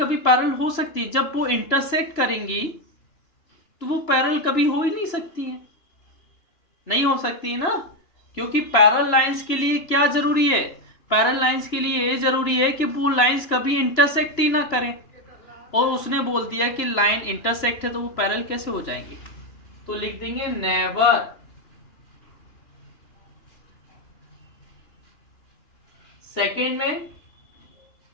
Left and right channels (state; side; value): late; right; 2.9 ms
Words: पैरल हो सकती है? जब वो इंटरसेक्ट करेंगी तो वो पैरल कभी हो ही नहीं सकती है, नहीं हो सकती है ना। क्योंकि पैरल लाइंस के लिए क्या जरूरी है? पैरल लाइंस के लिए ये जरूरी है कि वो लाइंस कभी इंटरसेक्ट ही ना करें। और उसने बोल दिया कि लाइन इंटरसेक्ट है तो वो पैरल कैसे हो जाएंगे? तो लिख देंगे नेवर। सेकेंड में